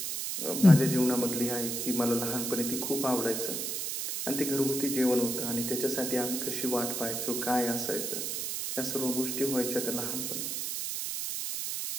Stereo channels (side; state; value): right; noise; hiss, 2 dB below the sound